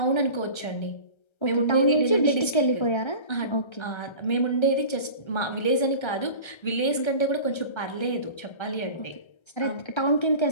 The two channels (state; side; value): late; right; 1.3 ms